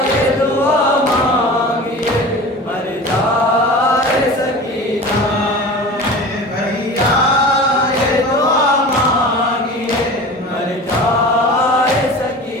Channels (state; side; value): normal; both; correlation 0.35